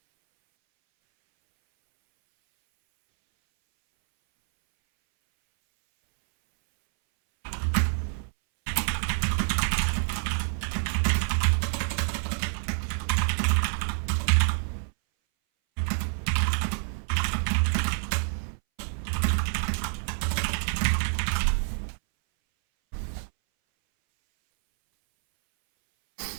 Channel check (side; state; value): left; silent; 60 dB below the other